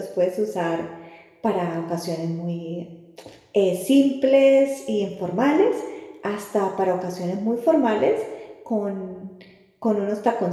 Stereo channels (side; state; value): both; identical; correlation 1.00